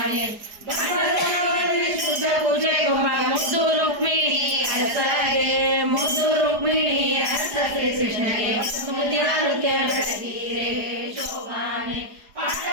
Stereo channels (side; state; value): left; late; 4.8 ms